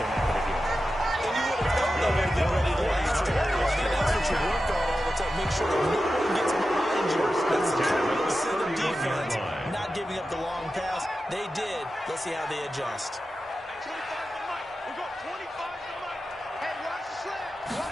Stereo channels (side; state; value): both; normal; correlation 0.92